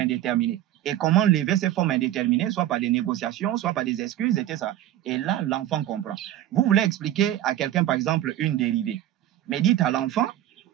Et comment lever ces formes indéterminées, soit par des négociations, soit par des excuses, etc. Et là, l'enfant comprend. Vous voulez expliquer à quelqu'un, par exemple, une dérivée. Mais dites à l'enfant,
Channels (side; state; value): left; quieter; 12.9 dB